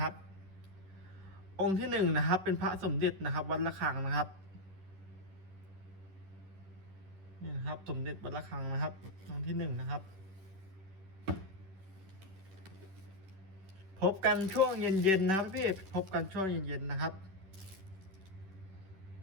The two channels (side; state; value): left; late; 11 ms